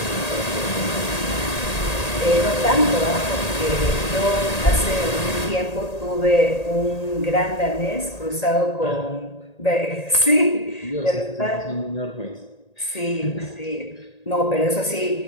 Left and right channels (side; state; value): right; late; 1.8 ms